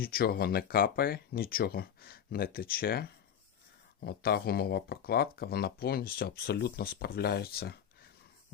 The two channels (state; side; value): quieter; right; 8.7 dB